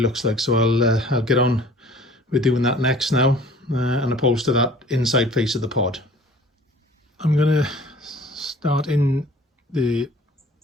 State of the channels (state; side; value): normal; both; correlation 0.50